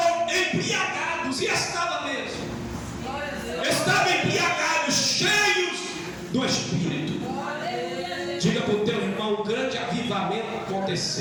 embriagados. E estava mesmo. Estavam embriagados, cheios do Espírito. Diga para o teu irmão: um grande avivamento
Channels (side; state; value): both; identical; correlation 1.00